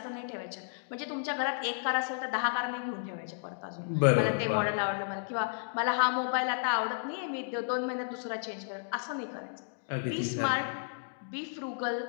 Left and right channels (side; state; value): right; silent; digital silence